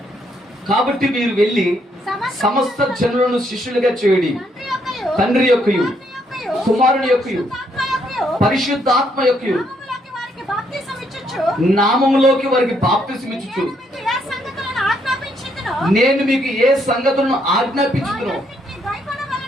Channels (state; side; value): normal; both; correlation 0.72